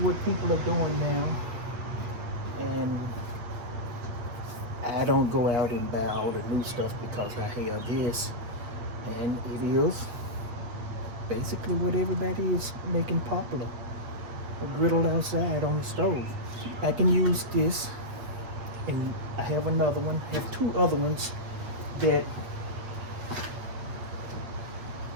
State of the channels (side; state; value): left; late; 8.5 ms